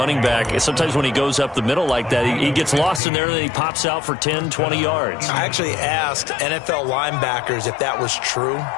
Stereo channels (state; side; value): drops out; right; at 3.0 s